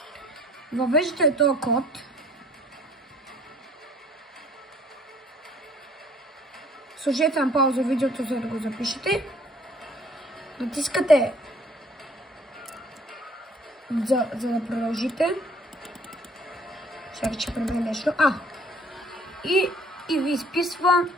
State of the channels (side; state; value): both; normal; correlation 0.57